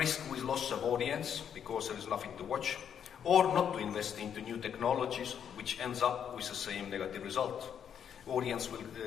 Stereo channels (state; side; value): quieter; right; 8.4 dB